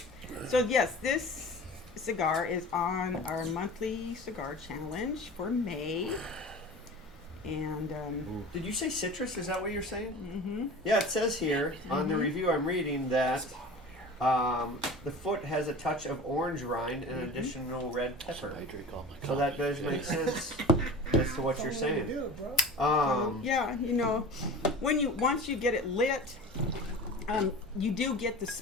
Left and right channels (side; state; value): both; normal; correlation 0.36